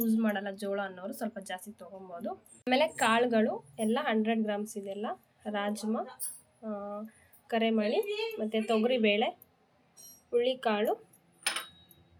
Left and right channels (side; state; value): both; identical; correlation 1.00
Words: ಮಾಡಲ್ಲ ಜೋಳ ಅನ್ನೋರು ಸ್ವಲ್ಪ ಜಾಸ್ತಿ ತೊಗೊಬೋದು. ಆಮೇಲೆ ಕಾಳುಗಳು ಎಲ್ಲ 100 ಗ್ರಾಮ್ಸ್ ಇದೆಲ್ಲ. ರಾಜ್ಮಾ, ಕರೆಮಣಿ, ಮತ್ತು ತೊಗರಿಬೇಳೆ, ಹುಳ್ಳಿಕಾಳು,